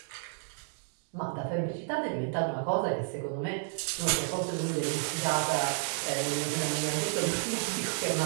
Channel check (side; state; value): left; silent; digital silence